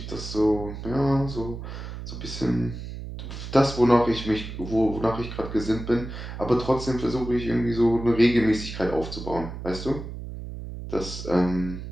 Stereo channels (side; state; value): right; noise; hum, 9 dB below the sound